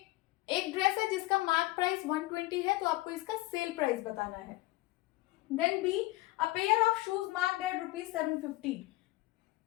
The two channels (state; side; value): quieter; right; 19.1 dB